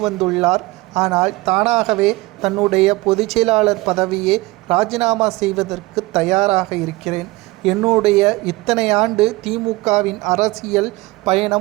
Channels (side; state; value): left; quieter; 21.0 dB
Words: ஆனால் தானாகவே தன்னுடைய பொதுச்செயலாளர் பதவியை ராஜினாமா செய்வதற்கு தயாராக இருக்கிறேன். என்னுடைய இத்தனை ஆண்டு திமுகவின் அரசியல்